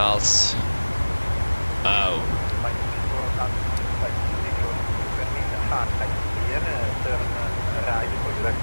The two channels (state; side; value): inverted; both; correlation -1.00